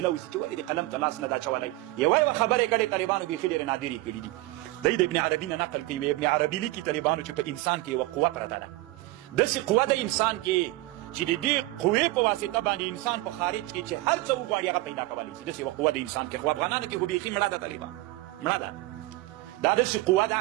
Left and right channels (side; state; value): left; quieter; 19.4 dB